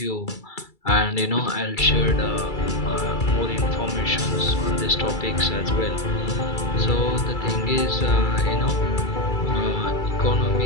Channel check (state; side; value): late; right; 2.3 ms